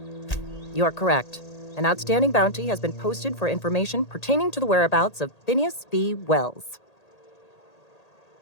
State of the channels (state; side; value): late; right; 1.8 ms